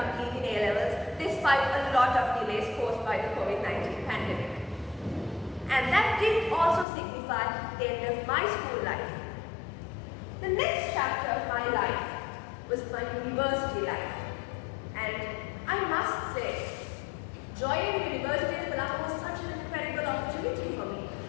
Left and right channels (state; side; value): drops out; right; at 6.9 s